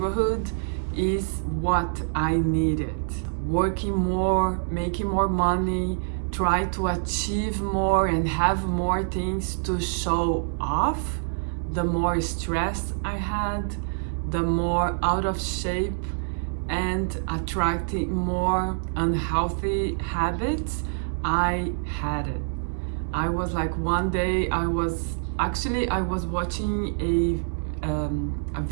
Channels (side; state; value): left; silent; digital silence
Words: is what I needed. Working more, making more money, try to achieve more and have more things to show off. The more stress I had, the more out of shape and attracting more unhealthy habits I had it. I was like, one day I was watching a